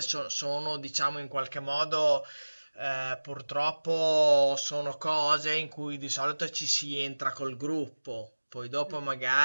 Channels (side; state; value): both; inverted; correlation -1.00